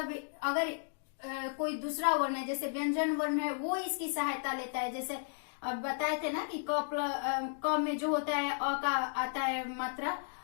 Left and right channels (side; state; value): right; silent; digital silence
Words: अगर कोई दूसरा वर्ण है जैसे व्यंजन वर्ण है वो इसकी सहायता लेता है। जैसे अब बताए थे ना कि क में जो होता है अ का आता है मात्रा,